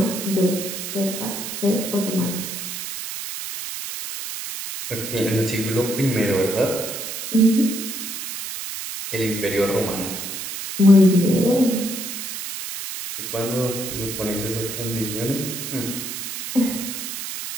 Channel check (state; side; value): noise; right; hiss, 6 dB below the sound